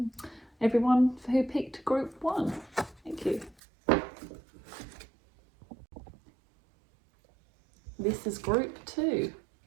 everyone who picked group 1. Thank you. This is group 2.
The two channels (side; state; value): left; drops out; at 3.6 s